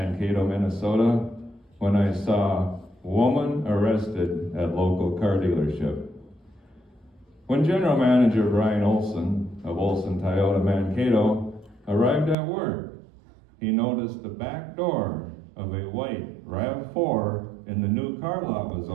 Minnesota, when I saw woman arrested at local car dealership. When General Manager Brian Olson of Olson Toyota Mankato arrived at work, he noticed the back door of a white RAV4 in the new car lot was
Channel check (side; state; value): left; drops out; at 12.4 s